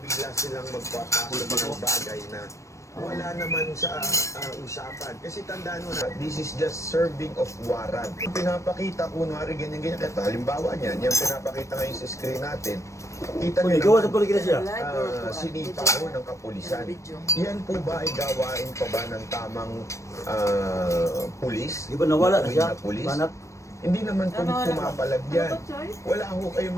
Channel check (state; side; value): late; right; 0.15 ms